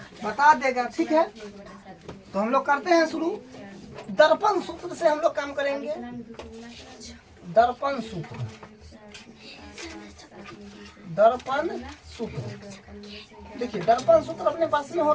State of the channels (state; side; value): identical; both; correlation 1.00